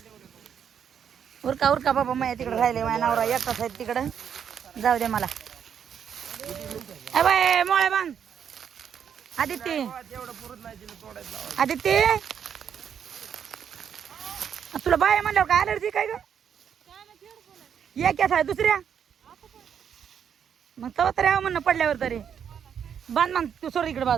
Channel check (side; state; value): left; quieter; 8.1 dB